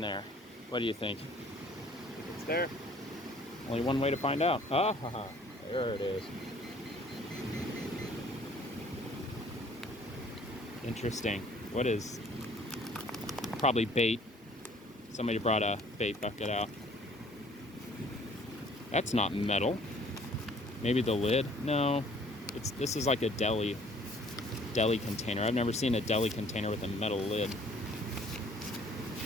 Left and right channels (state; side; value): normal; both; correlation 0.56